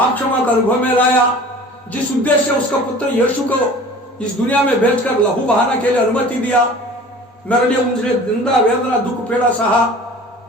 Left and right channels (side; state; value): both; normal; correlation 0.43